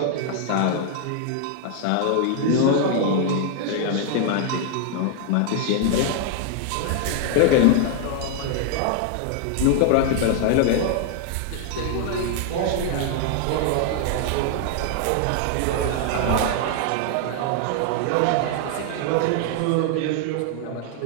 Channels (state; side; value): different; both; correlation 0.00